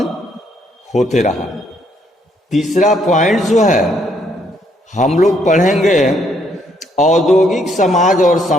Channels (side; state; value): both; normal; correlation 0.70